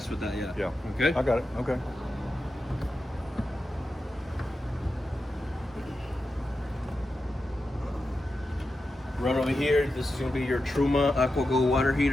with that. Yeah. Okay. I got it. Okay. Right over here, this is going to be your Truma AquaGo water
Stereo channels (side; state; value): both; normal; correlation 0.90